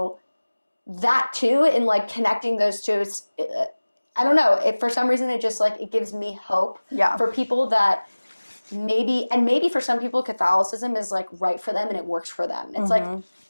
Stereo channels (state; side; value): inverted; both; correlation -1.00